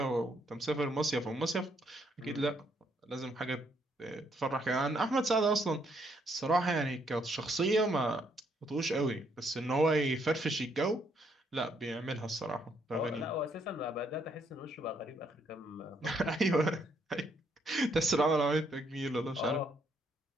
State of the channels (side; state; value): both; normal; correlation 0.72